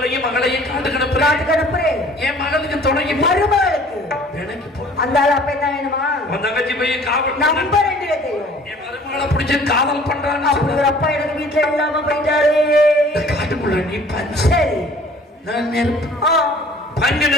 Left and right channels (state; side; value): normal; both; correlation 0.51